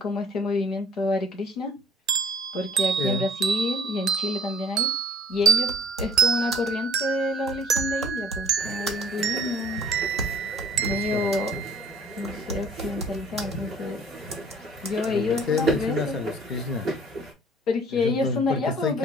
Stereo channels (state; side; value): normal; both; correlation 0.53